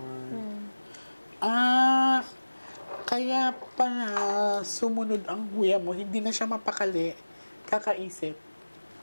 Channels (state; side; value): inverted; both; correlation -1.00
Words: Kaya pala sumunod ang kuya mo, hindi na siya mapakali, kakaisip.